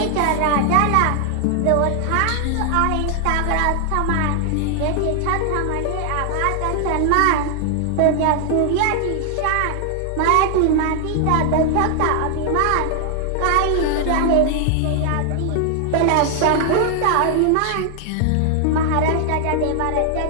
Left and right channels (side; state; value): both; different; correlation 0.00